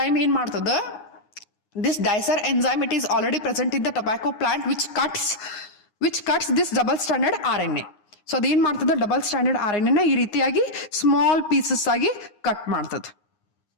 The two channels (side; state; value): right; late; 9.6 ms